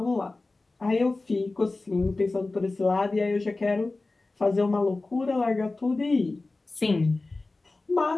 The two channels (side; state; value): right; quieter; 3.3 dB